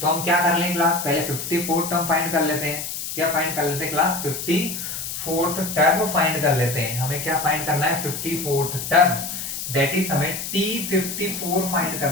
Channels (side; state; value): left; noise; hiss, 6 dB below the sound